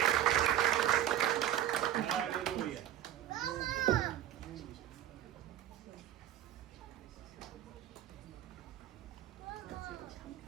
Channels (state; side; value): quieter; left; 11.6 dB